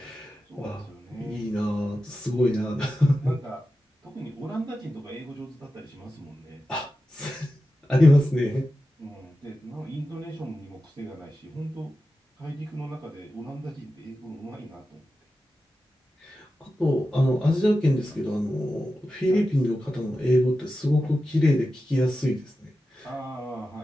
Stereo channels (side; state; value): both; normal; correlation 0.92